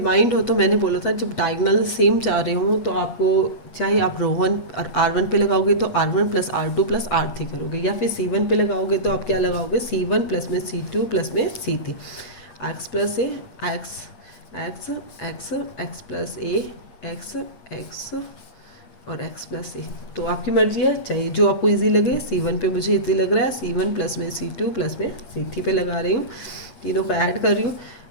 हो, तो मैंने बोला था जब डायगोनल सेम चाह रहे हो तो आपको चाहे आप रो 1 और r1 पे लगाओगे तो r1 plus r2 plus r3 करोगे, या फिर c1 पे लगाओगे तो आप क्या लगाओगे, c1 प्लस में c2 प्लस में c3, x plus A X plus A X और x प्लस ए। तो आपकी मर्जी है, चाहे जो आपको इजी लगे। c1 पे मुझे इजी लग रहा है, c1 प्लस में c2 प्लस में c3 पे लगा रही हूँ, तीनों को ऐड कर रही हूँ।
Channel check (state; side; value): late; right; 8.5 ms